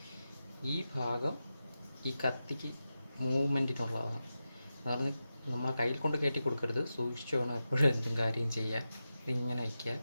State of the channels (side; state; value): both; inverted; correlation -0.92